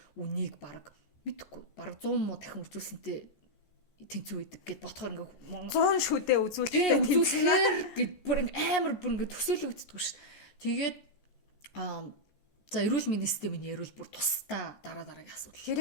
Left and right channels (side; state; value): right; late; 14 ms